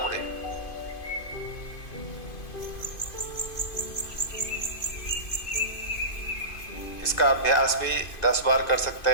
इसका अभ्यास भी 10 बार कर सकते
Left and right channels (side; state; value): right; late; 2.5 ms